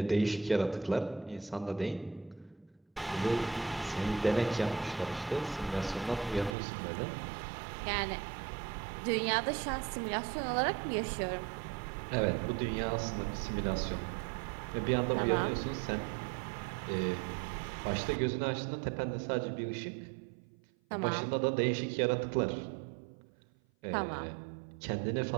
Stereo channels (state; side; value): drops out; left; at 6.6 s